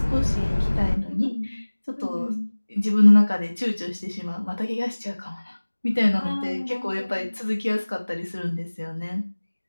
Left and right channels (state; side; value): inverted; both; correlation -1.00